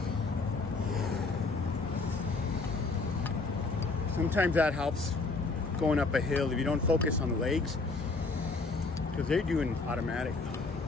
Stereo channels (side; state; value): right; quieter; 3.8 dB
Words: Sometimes that helps going up a hill if you don't focus on the legs, because they're doing automatic.